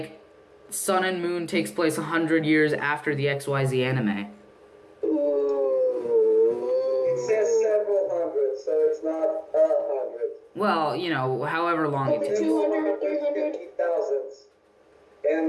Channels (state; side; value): identical; both; correlation 1.00